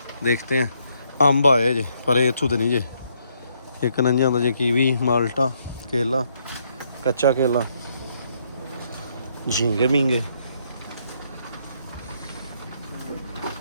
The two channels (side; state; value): both; inverted; correlation -0.73